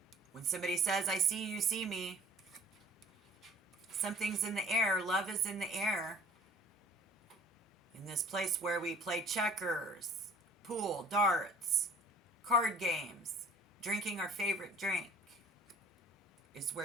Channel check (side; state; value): both; normal; correlation 0.51